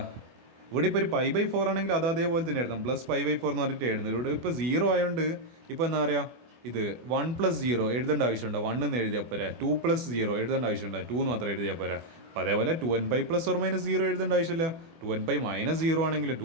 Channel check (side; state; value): left; late; 24 ms